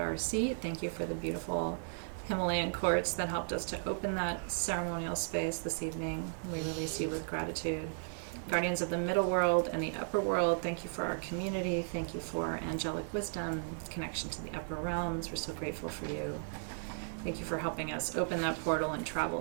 seat. Thank you for the beautiful Himalayan quartz that helped us to open that ceremonial space this evening. We release you with gratitude. Guardians of the middle world and the upper world, thank you for our community. Thank you for angelic wisdom, connection to the upper realms. We're so grateful for you. Thank you for helping us open that portal and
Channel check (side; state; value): left; silent; digital silence